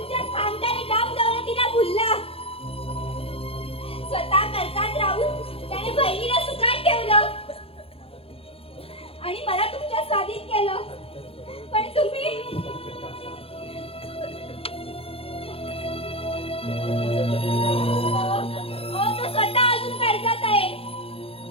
खानदानी काम दौलतीला भुलला. स्वतः कर्जात राहून त्याने बहिणीला सुखात ठेवलं आणि मला तुमच्या स्वाधीन केलं. पण तुम्ही तो स्वतः अजून कर्जात आहे.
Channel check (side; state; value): right; late; 0.27 ms